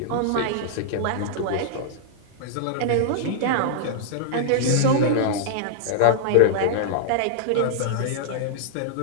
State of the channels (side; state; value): both; different; correlation -0.01